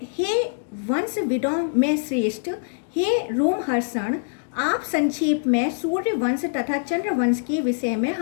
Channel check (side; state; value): right; silent; digital silence